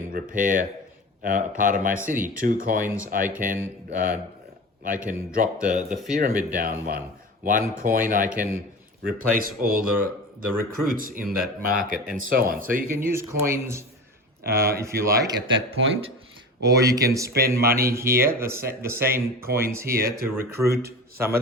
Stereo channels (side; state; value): both; normal; correlation 0.32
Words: repair a part of my city. 2 coins, I can drop the pyramid down 1. 1 coin, I can replace all the recruits in that market, and so on. So you can use coins if you like at that point, or you can spend money here, the same coins here, to recruit some